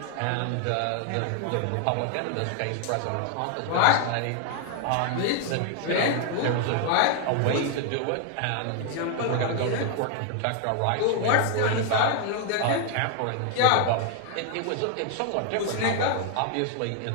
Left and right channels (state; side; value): different; both; correlation 0.00